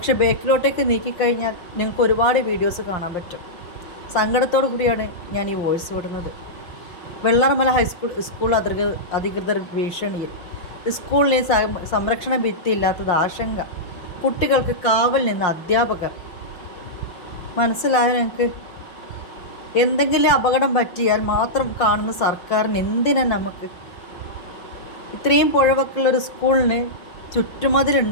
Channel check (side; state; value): right; late; 5.8 ms